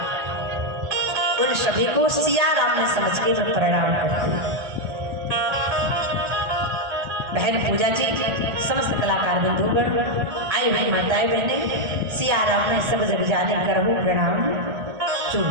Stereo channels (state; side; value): late; left; 1.7 ms